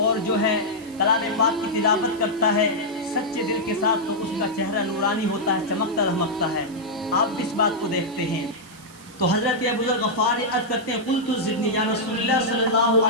اور جو ہے کلام پاک کی تلاوت کرتا ہے سچے دل کے ساتھ, تو اس کا چہرہ نورانی ہوتا ہے, چمکتا دھمکتا ہے. آپ بھی اس بات کو دیکھتے ہیں. تو حضرت ابو ذر غفاری عرض کرتے ہیں قلت زدنی یا رسول اللہ صلی اللہ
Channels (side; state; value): right; noise; hiss, 22 dB below the sound